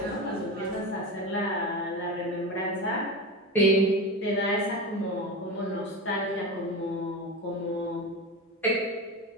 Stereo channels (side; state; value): both; normal; correlation 0.23